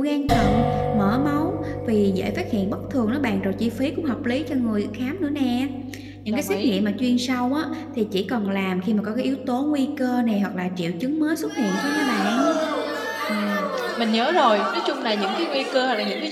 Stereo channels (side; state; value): both; identical; correlation 1.00